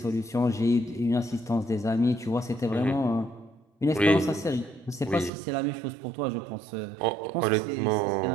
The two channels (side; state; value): left; drops out; at 5.3 s